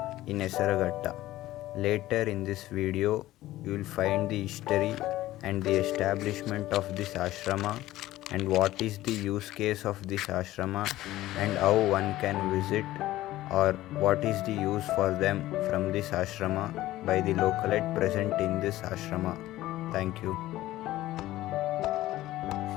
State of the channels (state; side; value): quieter; right; 15.7 dB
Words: in Esaragatta. Later in this video, you will find the history and the establishment of this ashrama and what is the use case of this ashrama and how one can visit or what is the use for them from this ashrama by the localite present in this ashrama. Thank you.